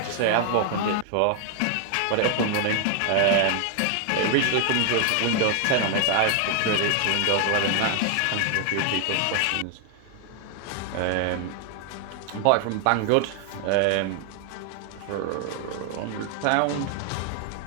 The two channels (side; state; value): both; different; correlation 0.00